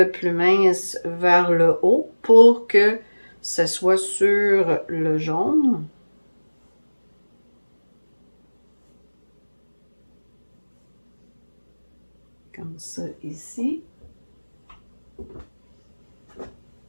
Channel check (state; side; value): inverted; both; correlation -1.00